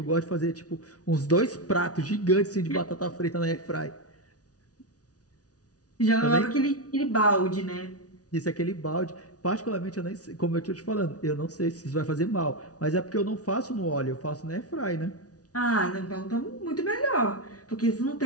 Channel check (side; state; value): right; late; 0.68 ms